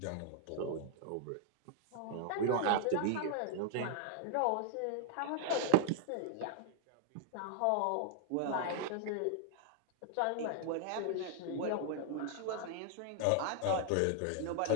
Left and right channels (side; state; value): both; different; correlation 0.00